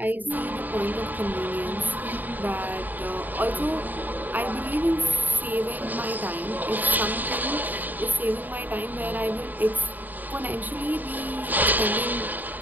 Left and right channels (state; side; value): late; left; 0.086 ms